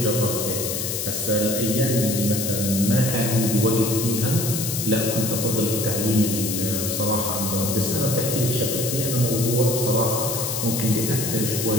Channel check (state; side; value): noise; left; hiss, 3 dB below the sound